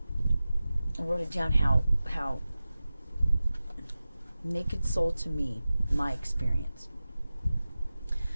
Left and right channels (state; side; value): inverted; both; correlation -0.95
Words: I wrote it down how Naked Soul to me, my experience